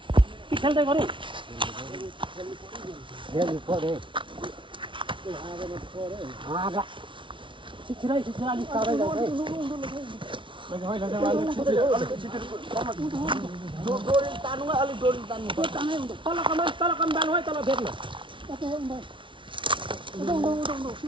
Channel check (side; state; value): left; late; 0.24 ms